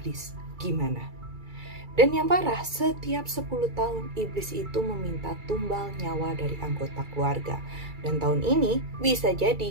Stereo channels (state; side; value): late; left; 2.3 ms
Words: gimana? Dan yang parah, setiap 10 tahun iblis itu meminta tumbal nyawa dari anggota keluarga. Dan tahun ini bisa